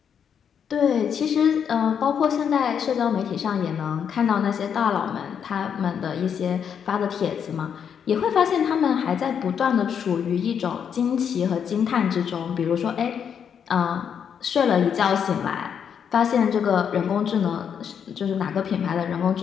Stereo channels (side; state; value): right; quieter; 7.7 dB